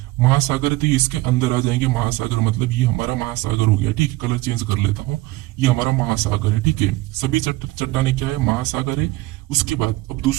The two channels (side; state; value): left; quieter; 19.2 dB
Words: महासागर है तो ये इसके अंदर आ जाएंगे, महासागर मतलब ये हमारा महासागर हो गया, ठीक है। कलर चेंज कर लेता हूँ, ये हमारा महासागर है, ठीक है। सभी चट्टाने क्या है, महासागर है। उसके बाद अब